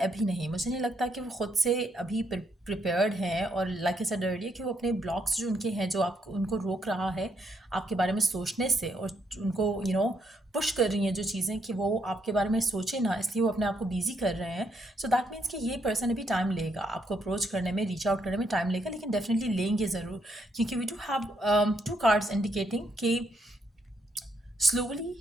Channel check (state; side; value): normal; both; correlation 0.75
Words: नहीं। मुझे नहीं लगता कि वो खुद से अभी प्रिपेयर्ड हैं, और लाइक आई सेड अर्लियर कि वो अपने ब्लॉक्स जो उनके हैं जो आपको उनको रोक रहा है आपके बारे में सोचने से, और उनको पुश कर रही हैं जो चीज़ें कि वो आपके बारे में सोचे ना, इसलिए वो अपने आप को बिजी कर रहे हैं। सो दैट मीन्स कि ये पर्सन अभी टाइम लेगा आपको अप्रोच करने में, रीच आउट करने में टाइम लेगा, लेकिन डेफिनेटली लेंगे ज़रूर, क्योंकि we do have two cards indicating कि